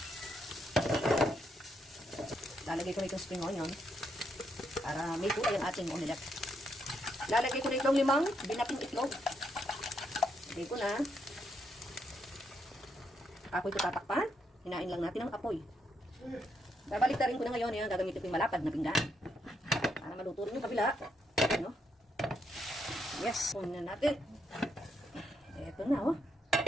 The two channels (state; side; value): normal; both; correlation 0.77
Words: Lalagay ko na itong spring onion para may kulay ang ating omelette. Lalagay ko na itong 5 binaping itlog. Lagay ko na. Apoy ko tatakpan. Hinain lang natin ang apoy. Babaliktarin ko na ngayon. Ayan, gagamitin ko yung malapad na pinggan. Para maluto rin yung kabila. Ano? Yes. Kunin na natin. Eto na, oh.